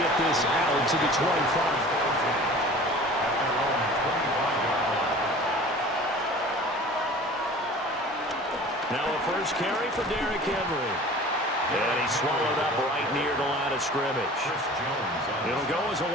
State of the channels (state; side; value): normal; both; correlation 0.43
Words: this out to the 25. Now a first carry for Derrick Henry. And he's swallowed up right near the line of scrimmage. It'll go as a